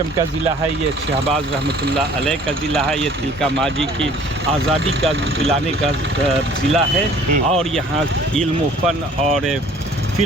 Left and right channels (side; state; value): both; normal; correlation 0.53